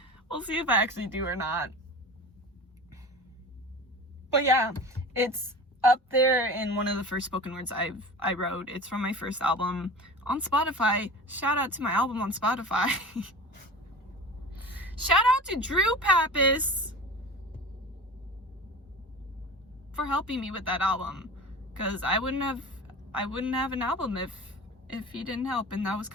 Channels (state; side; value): normal; both; correlation 0.35